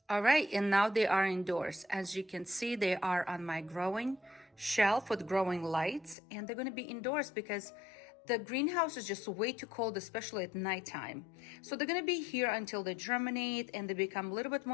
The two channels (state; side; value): drops out; right; at 6.2 s